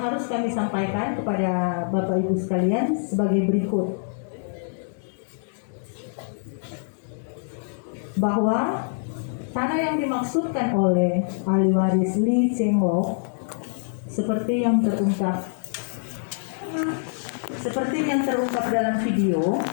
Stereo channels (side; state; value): right; silent; digital silence